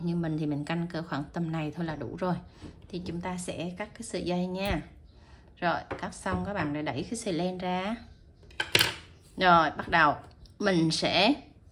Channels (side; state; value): both; identical; correlation 1.00